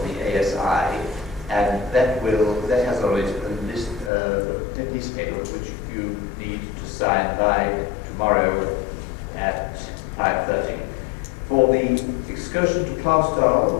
the ASI, and that has a list, a piece of paper which you need to sign by tomorrow at 5:30. For the excursion to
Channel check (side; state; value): right; drops out; at 4.1 s